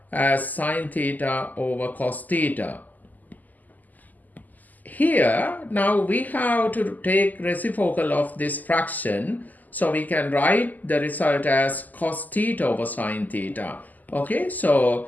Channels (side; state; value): right; late; 0.082 ms